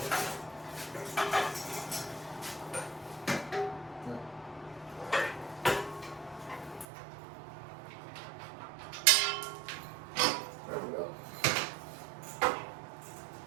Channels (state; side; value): drops out; left; at 6.9 s